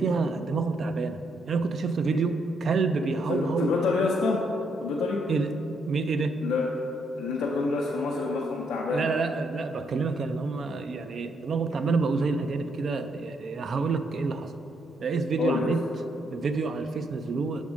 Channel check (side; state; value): both; normal; correlation 0.74